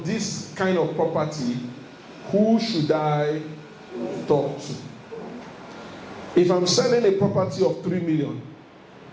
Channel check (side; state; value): both; identical; correlation 1.00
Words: this kind of property, who should I talk to? If I'm selling a property of 3 million,